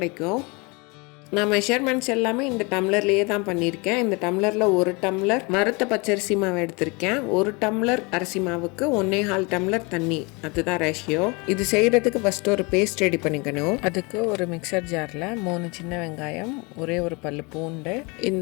நான் மெஷர்மெண்ட்ஸ் எல்லாமே இந்த டம்ளர்லேயே தான் பண்ணியிருக்கேன். இந்த டம்ளரில் 1 டம்ளர் வறுத்த பச்சரிசி மாவு எடுத்திருக்கேன். 1 டம்ளர் அரிசி மாவுக்கு 1.25 டம்ளர் தண்ணி, அதுதான் ரேஷியோ. இது செய்கிறதுக்கு ஃபஸ்ட்டு ஒரு பேஸ்ட் ரெடி பண்ணிக்கணும். அதுக்கு ஒரு மிக்சர் ஜாரில் 3 சின்ன வெங்காயம், ஒரே ஒரு பல்லு பூண்டு,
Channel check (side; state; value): right; quieter; 28.4 dB